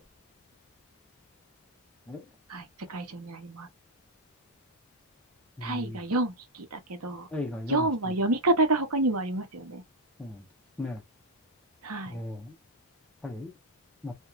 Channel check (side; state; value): both; normal; correlation 0.01